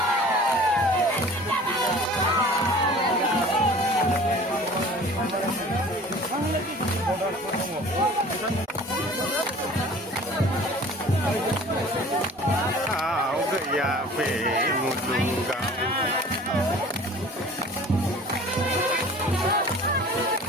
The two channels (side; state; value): both; normal; correlation 0.45